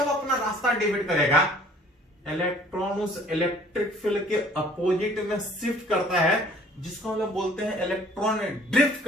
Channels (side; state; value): both; normal; correlation 0.55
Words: अपना रास्ता डिवाइड करेगा। इलेक्ट्रॉन उस इलेक्ट्रिक फील्ड के अपोजिट में शिफ्ट करता है, जिसको हम लोग बोलते हैं इलेक्ट्रॉन ड्रिफ्ट